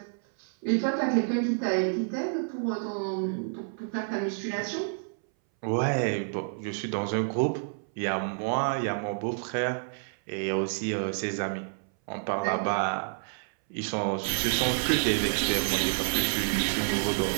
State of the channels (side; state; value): left; silent; 59 dB below the other